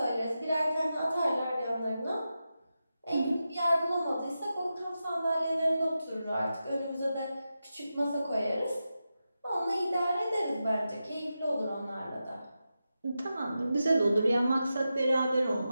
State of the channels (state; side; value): inverted; both; correlation -0.91